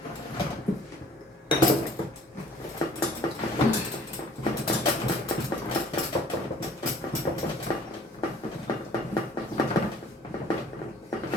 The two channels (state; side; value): normal; both; correlation 0.53